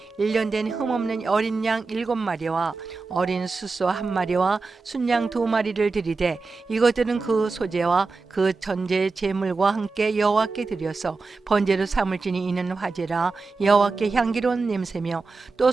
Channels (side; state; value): left; quieter; 4.1 dB